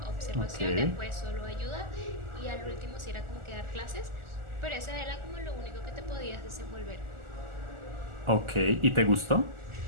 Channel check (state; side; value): late; left; 1.4 ms